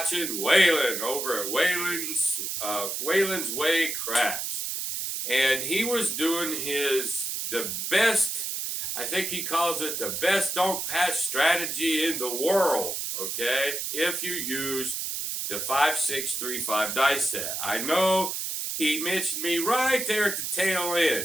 Waylon over at Waylon's Way Craps, and he was doing the best, I think he calls it the best don't pass strategy in the world, okay, if you use the 5-6-3-5 dice set. I know he mentioned me right there at the tail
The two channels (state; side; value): noise; right; hiss, 3 dB below the sound